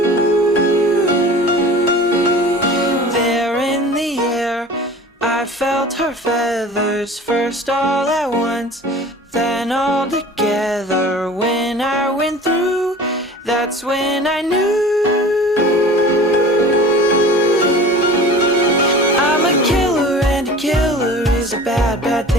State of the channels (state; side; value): normal; both; correlation 0.41